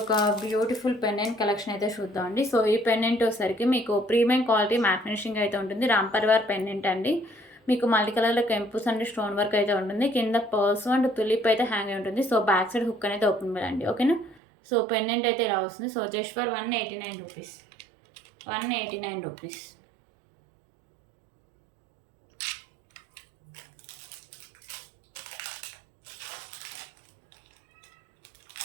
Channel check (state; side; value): drops out; left; at 14.4 s